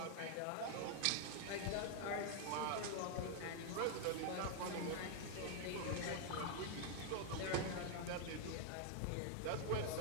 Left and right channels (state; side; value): different; both; correlation 0.00